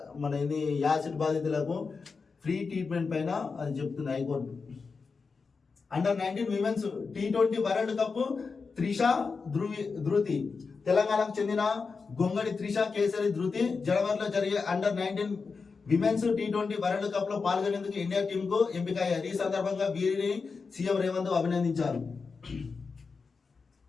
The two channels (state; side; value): quieter; right; 4.8 dB